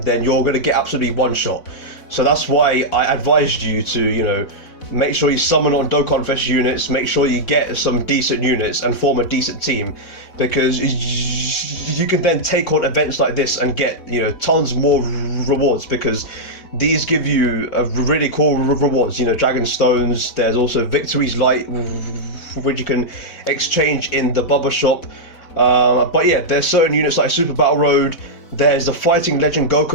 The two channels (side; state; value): right; late; 4.4 ms